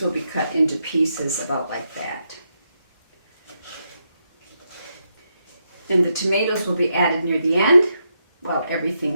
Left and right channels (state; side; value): inverted; both; correlation -0.82